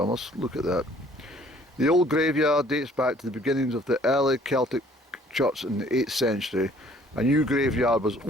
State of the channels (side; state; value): both; normal; correlation 0.58